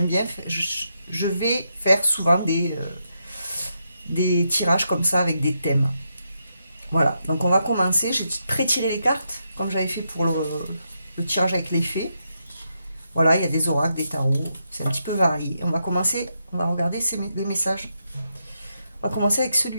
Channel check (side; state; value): both; inverted; correlation -0.82